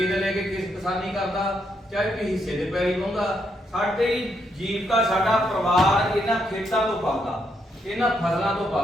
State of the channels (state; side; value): normal; both; correlation 0.77